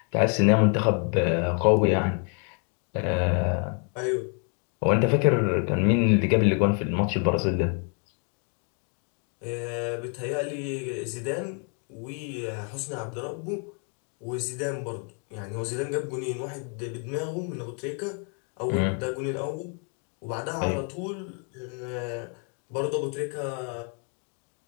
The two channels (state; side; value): quieter; right; 40.0 dB